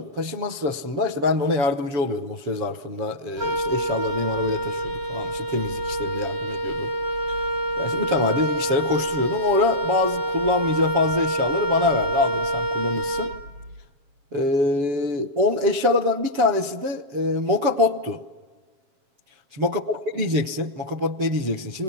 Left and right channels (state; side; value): late; left; 7.4 ms